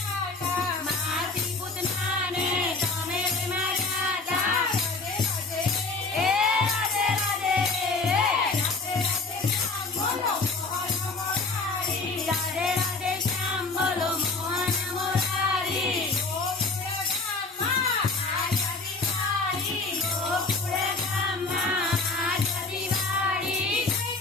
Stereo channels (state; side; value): quieter; right; 3.7 dB